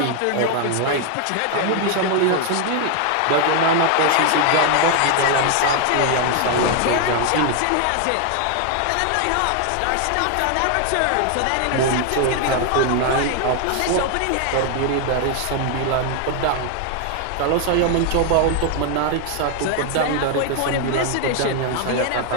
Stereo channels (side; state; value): both; different; correlation 0.00